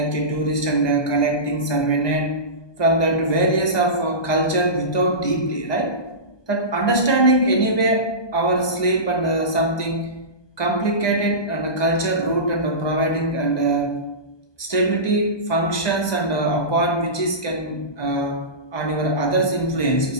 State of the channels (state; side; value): late; right; 1.2 ms